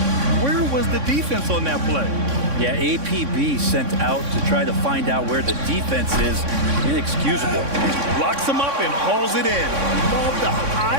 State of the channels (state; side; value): late; left; 3.6 ms